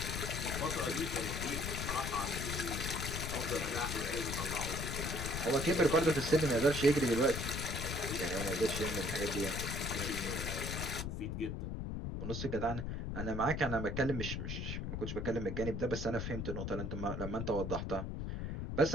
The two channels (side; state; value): left; noise; rumble, 3 dB below the sound